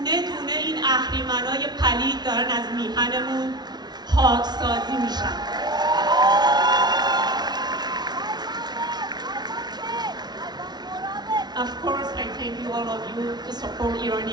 دونه این اهریمنای پلید دارن از میهنمون پاکسازی میشن. Of course, I thank you all of you to support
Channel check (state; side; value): late; left; 0.20 ms